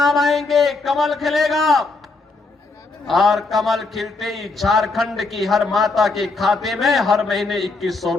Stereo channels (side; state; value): right; quieter; 3.6 dB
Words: आएंगे, कमल खिलेगा, और कमल खिलते ही झारखंड की हर माता के खाते में हर महीने 2100